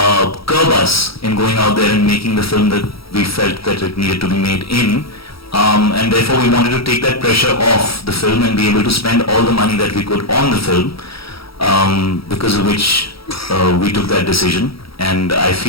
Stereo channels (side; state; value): right; late; 0.75 ms